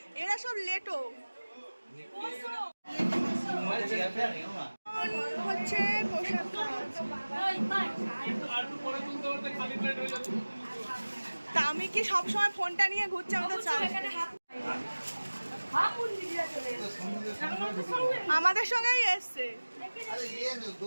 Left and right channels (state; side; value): inverted; both; correlation -1.00